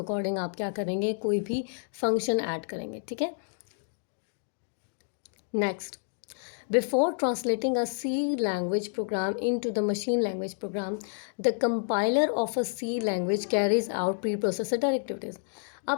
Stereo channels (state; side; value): silent; right; digital silence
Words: आप क्या करेंगे, कोई भी फंक्शन ऐड करेंगे, ठीक है। Next, before translating a C language program into the machine language program, the compiler of a C language carries out preprocessor directives.